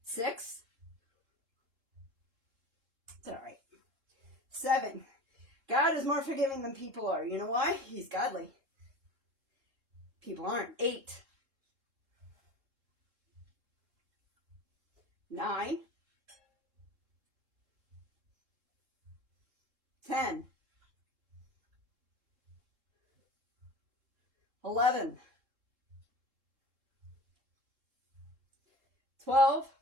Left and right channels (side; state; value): left; late; 3.7 ms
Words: 6. It's all right. 7. God is more forgiving than people are. You know why? He's godly. People aren't. 8. 9. 10. 11. 12.